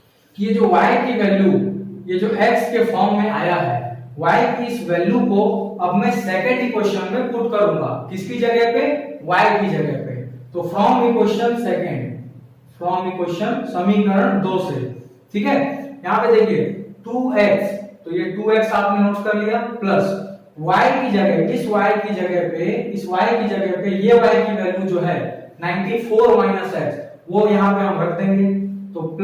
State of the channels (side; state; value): both; identical; correlation 1.00